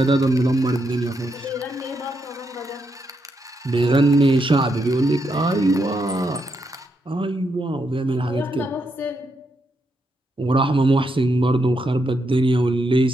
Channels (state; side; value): normal; both; correlation 0.81